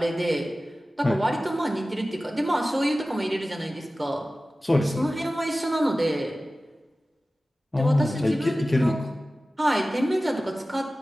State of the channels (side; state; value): both; normal; correlation 0.96